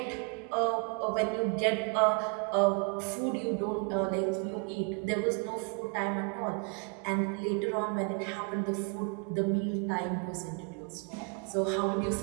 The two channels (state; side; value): quieter; left; 32.9 dB